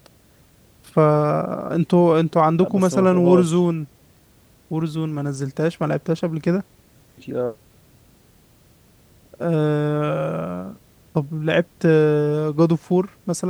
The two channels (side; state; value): both; identical; correlation 1.00